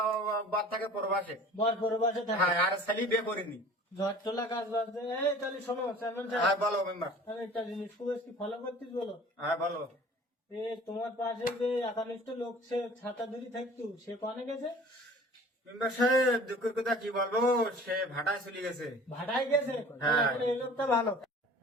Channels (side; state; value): both; normal; correlation 0.46